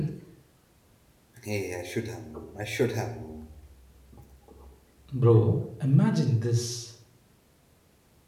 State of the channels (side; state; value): both; identical; correlation 1.00